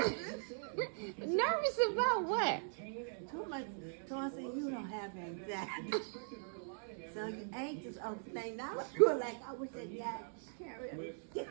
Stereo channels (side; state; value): left; silent; digital silence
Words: Nervous about what? Too much. So I said, you don't have anxiety. So you anxious over things. I was going like, I wish that guy carried. That